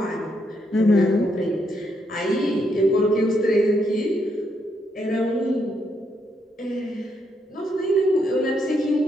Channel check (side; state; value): both; normal; correlation 0.77